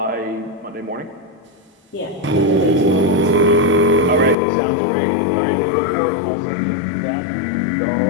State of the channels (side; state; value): right; drops out; at 4.4 s